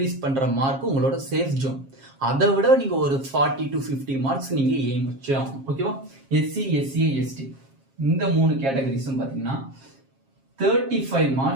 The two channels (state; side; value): late; left; 7.4 ms